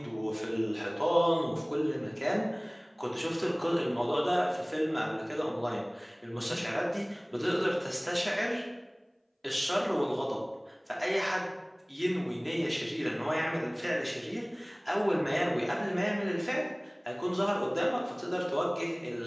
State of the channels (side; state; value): both; identical; correlation 1.00